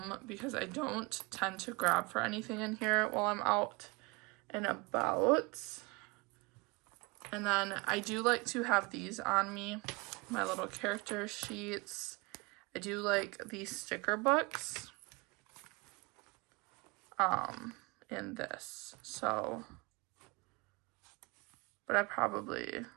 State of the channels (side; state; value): left; quieter; 26.7 dB